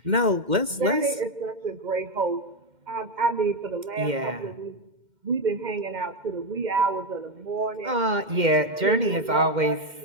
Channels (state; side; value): late; left; 2.1 ms